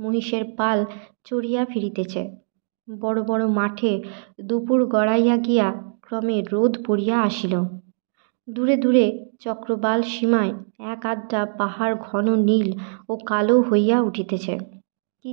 পাল চড়িয়া ফিরিতেছে। বড় বড় মাঠে দুপুর গড়াইয়া গিয়া ক্রমে রোদ পড়িয়া আসিল। দূরে দূরে চক্রবাল সীমায় এক আধটা পাহাড় ঘন নীল ও কালো হইয়া উঠিতেছে। কি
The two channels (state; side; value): silent; left; digital silence